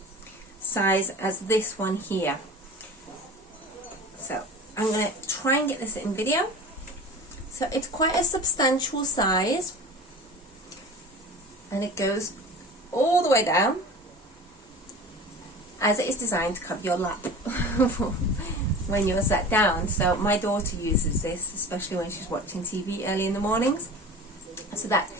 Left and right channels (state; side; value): normal; both; correlation 0.37